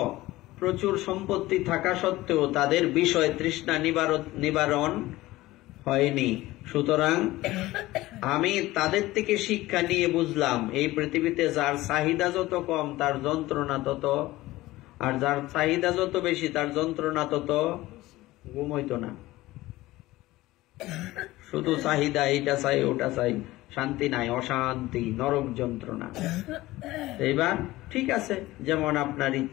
প্রচুর সম্পত্তি থাকা সত্ত্বেও তাদের বিষয় তৃষ্ণা নিবারণ হয়নি। সুতরাং আমি তাদের থেকে শিক্ষা নিয়ে বুঝলাম এই পৃথিবীতে যার চাহিদা যত কম তার যন্ত্রণা তত, আর যার চাহিদা যত বেশি তার যন্ত্রণা তত ঘুম হইতো না। শুধু চাহিদা, এইটা চাই ওটা চাই, শান্তি নাই, অশান্তি, নরক যন্ত্রণা। এইবার ঠিক আছে, যেমন আপনার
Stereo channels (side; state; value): right; quieter; 17.9 dB